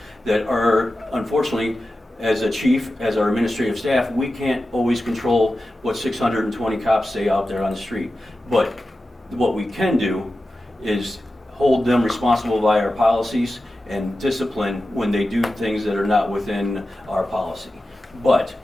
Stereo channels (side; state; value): both; normal; correlation 0.93